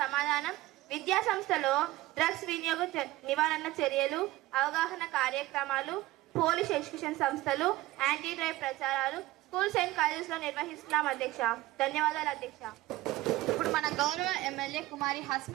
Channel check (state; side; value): quieter; left; 17.9 dB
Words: సమాధానం, విద్యా సంస్థలో డ్రగ్స్ వినియోగ నివారణ చర్యలు, అవగాహన కార్యక్రమాలు, పోలీస్ ఎడ్యుకేషన్ సంస్థలు, యాంటీ డ్రైవ్ ప్రచారాలు స్కూల్స్ అండ్ కాలేజెస్ లో నిర్వహిస్తున్నాం అధ్యక్ష. ధన్యవాదాలు అధ్యక్ష. ఇప్పుడు మన గౌరవ ఎమ్మెల్యే కుమారి